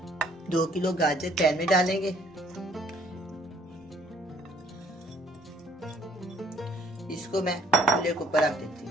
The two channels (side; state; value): both; normal; correlation 0.60